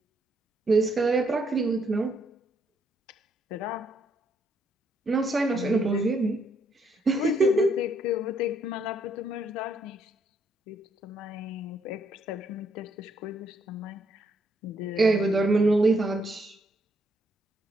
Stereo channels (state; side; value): normal; both; correlation 0.73